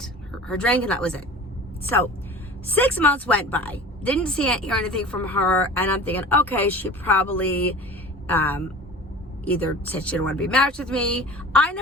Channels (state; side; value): normal; both; correlation 0.39